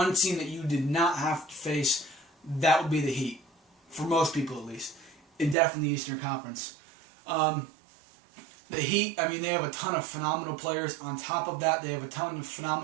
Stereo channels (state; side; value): drops out; left; at 5.6 s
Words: team that you did not have to face, that would be the Heat. For most people, at least. And definitely the Eastern Conference. The Heat, I mean, they have a ton of phenomenal players. On top of that, they have a ton of